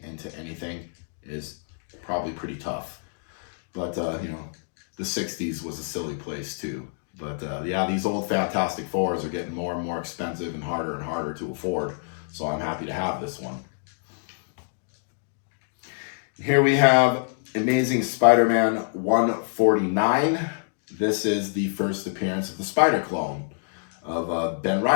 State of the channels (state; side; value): silent; right; digital silence